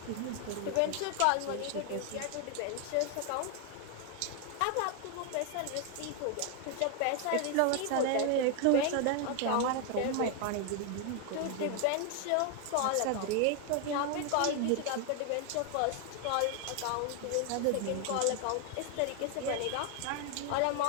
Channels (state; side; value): different; both; correlation 0.00